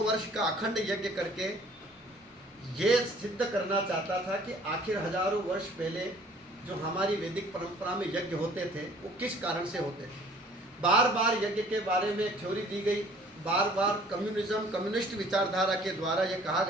वर्ष का अखंड यज्ञ करके ये सिद्ध करना चाहता था कि आखिर हजारों वर्ष पहले जो हमारी वैदिक परंपरा में यज्ञ होते थे वो किस कारण से होते थे। बार बार यज्ञ के बारे में थ्योरी दी गई, बार बार कम्युनिस्ट विचारधारा के द्वारा ये कहा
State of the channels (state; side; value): normal; both; correlation 0.54